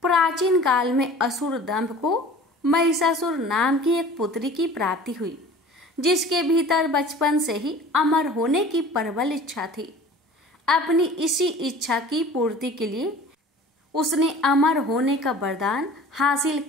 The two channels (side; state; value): both; normal; correlation 0.43